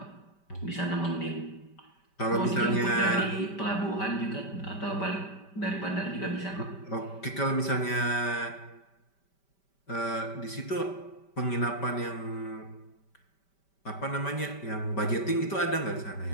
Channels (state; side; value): late; right; 5.1 ms